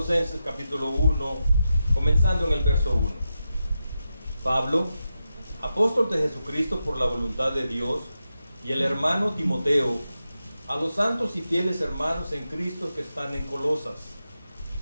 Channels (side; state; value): both; inverted; correlation -0.89